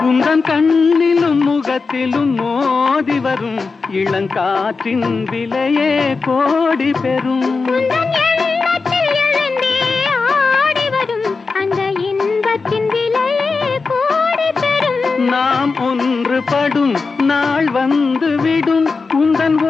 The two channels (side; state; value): right; quieter; 4.4 dB